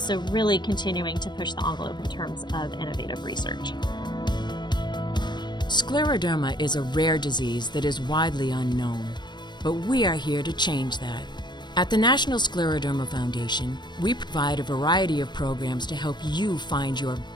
really continuing to push the envelope in terms of innovative research. Scleroderma is a rare disease that is widely unknown, but we are here to change that. At the National Scleroderma Foundation, we provide a variety of programs to help you find your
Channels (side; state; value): right; late; 0.22 ms